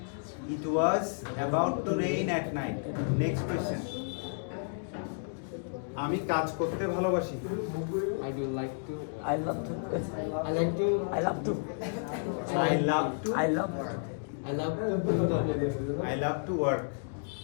It was about to rain at night. Next question. আমি কাজ করতে ভালোবাসি। I do like to I love to. I like to I love to. I love to I love. I love to do the I love to work.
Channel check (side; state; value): right; silent; digital silence